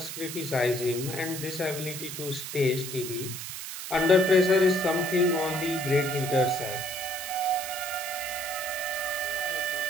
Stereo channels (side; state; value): right; noise; hiss, 7 dB below the sound